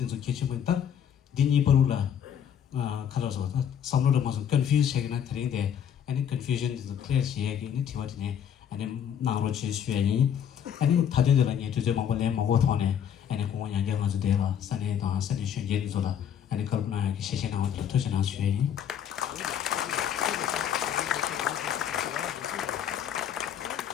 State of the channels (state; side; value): quieter; right; 8.8 dB